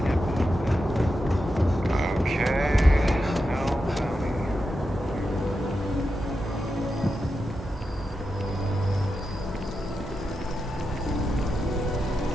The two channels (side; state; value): both; normal; correlation 0.88